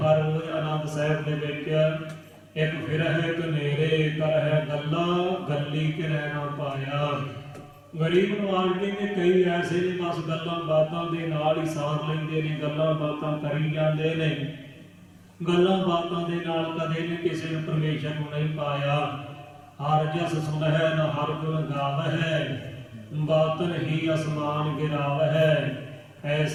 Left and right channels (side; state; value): both; identical; correlation 1.00